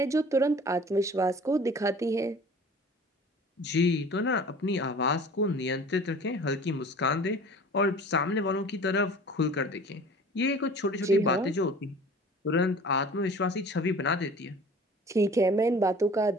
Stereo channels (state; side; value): normal; both; correlation 0.44